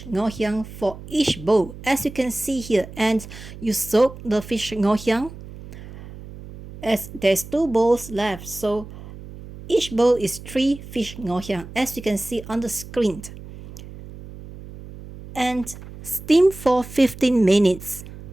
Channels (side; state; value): right; noise; hum, 15 dB below the sound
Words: ngoh hiang for each bowl, as you can see here. And you soak the fish ngoh hiang, as there's 2 bowls left, so each bowl is 3 fish ngoh hiang, as you can see on the screen. And steam for 15 minutes.